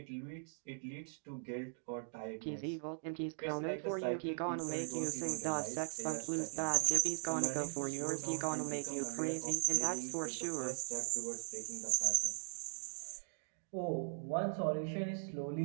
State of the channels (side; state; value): left; silent; digital silence